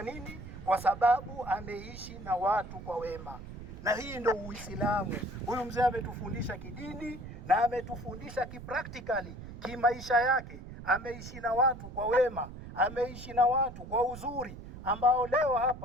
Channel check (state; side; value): noise; right; rumble, 12 dB below the sound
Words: nini? Kwa sababu ameishi na watu kwa wema, na hii ndio Uislamu. Huyu mzee ametufundisha kidini na ametufundisha kipractically, kimaisha yake. Ameishi na watu kwa wema, ameishi na watu kwa uzuri, ambao leo